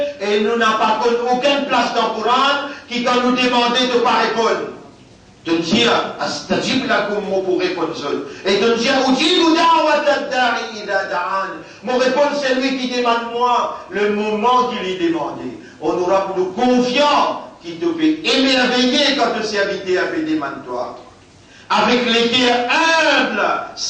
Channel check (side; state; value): both; identical; correlation 1.00